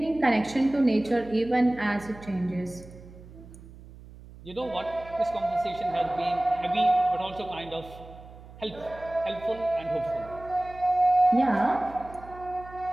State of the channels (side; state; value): right; noise; hum, 18 dB below the sound